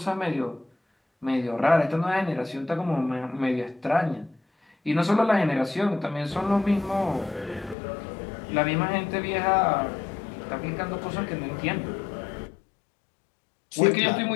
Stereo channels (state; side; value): drops out; right; at 7.8 s